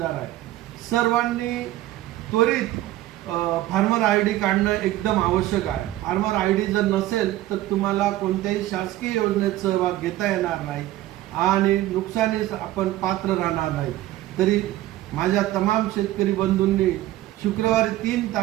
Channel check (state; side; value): quieter; left; 15.2 dB